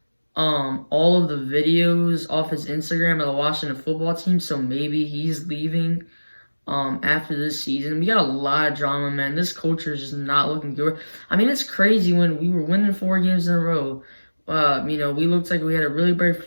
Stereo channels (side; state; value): both; inverted; correlation -1.00